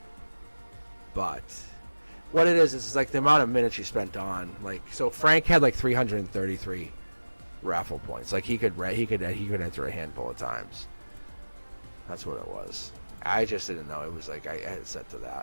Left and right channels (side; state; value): both; inverted; correlation -1.00